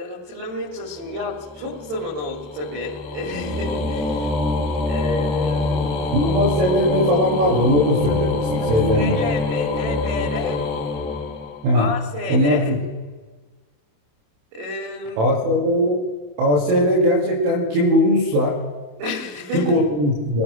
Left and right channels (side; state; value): left; late; 27 ms